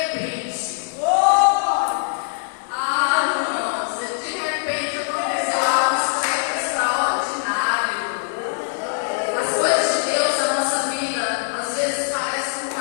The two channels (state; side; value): silent; right; 64 dB below the other